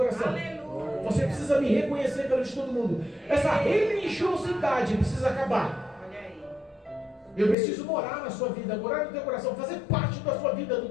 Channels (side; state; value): right; drops out; at 7.6 s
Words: Aleluia. Você precisa me reconhecer perante todo mundo. Essa religiosidade precisa acabar. Olha aí. Eu preciso morar na sua vida, morar no teu coração, fazer parte da sua vida, do